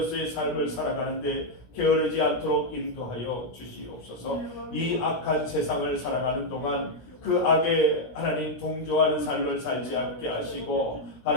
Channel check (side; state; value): right; late; 17 ms